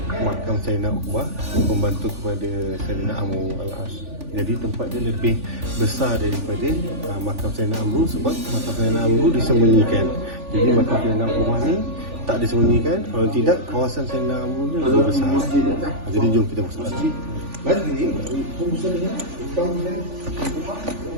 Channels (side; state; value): left; late; 3.4 ms